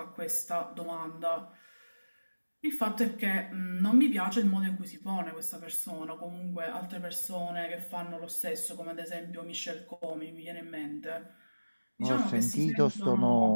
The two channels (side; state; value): both; inverted; correlation -1.00